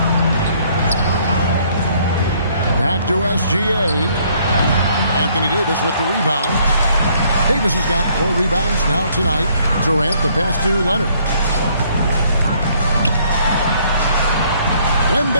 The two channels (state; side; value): inverted; both; correlation -0.64